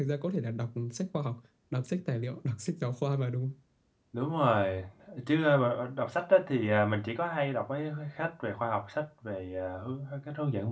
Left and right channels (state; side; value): identical; both; correlation 1.00